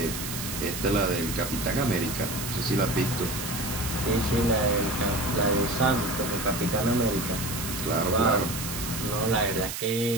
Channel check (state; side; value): noise; right; hiss, 6 dB below the sound